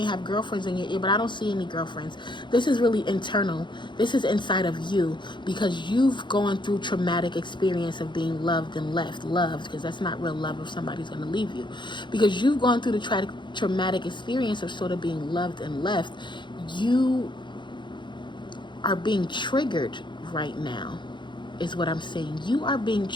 have girlfriends in your ear, but I don't see any girlfriends. This is really internal. This is inside of you, because you've gone through traumatic experience of being loved and left. Loved, because that's not real love if somebody's going to leave you. Because you've gone through the traumatic experience of sort of being loved and left. You are being triggered right now, is what I'm saying. You are being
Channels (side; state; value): right; late; 0.23 ms